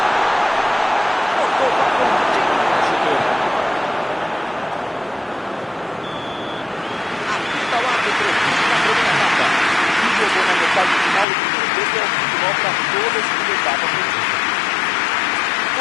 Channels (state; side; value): drops out; right; at 11.2 s